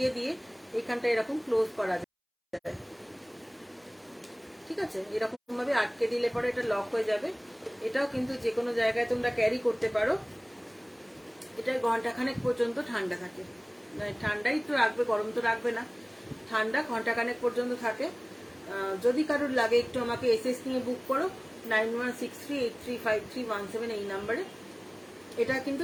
দিয়ে এখানটা এরকম ক্লোজ করা যায়। ঠিক আছে, এরকম ভাবে আটকে দিলে পরে এটা লক হয়ে যাবে। এটাও কিন্তু যে কোনো জায়গায় তোমরা ক্যারি করতে পারো। এটা ঘন্টাখানেক পর্যন্ত ঠান্ডা থাকে, ঠান্ডাই তো রাখবে, গরম তো রাখবে না, ঠান্ডা ঘন্টাখানেক পর্যন্ত থাকে। যদি কারোর লাগে একটু আমাকে এসএস নিয়ে বুক করো 9163835317 এই নাম্বারে। এটা কিন্তু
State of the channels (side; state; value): both; identical; correlation 1.00